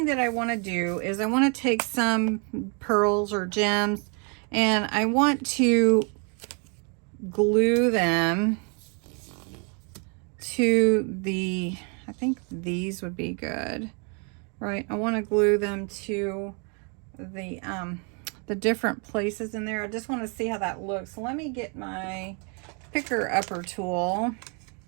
that I want to do is I want to take some pearls or gems and I want to glue them to the, I think these would be good, right? I want to glue them to the different places in there. I just want to see how that looks. So let me get my picker upper tool,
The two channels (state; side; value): quieter; left; 36.6 dB